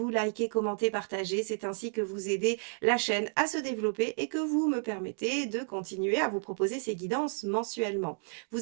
likez, commentez, partagez. C'est ainsi que vous aidez la chaîne à se développer et que vous me permettez de continuer à vous proposer ces guidances mensuellement.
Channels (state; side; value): silent; left; 57 dB below the other